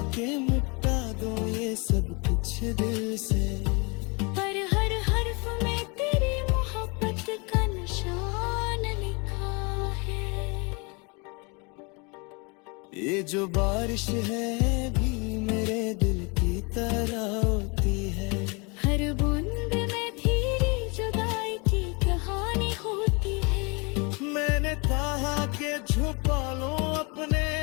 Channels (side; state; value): right; quieter; 30.6 dB